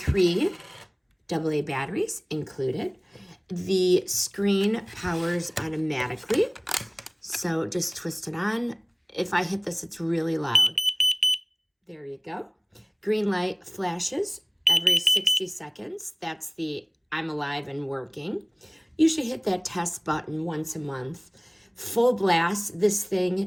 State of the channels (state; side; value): identical; both; correlation 1.00